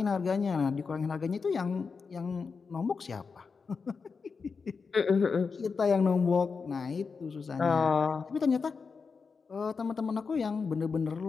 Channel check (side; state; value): right; quieter; 5.1 dB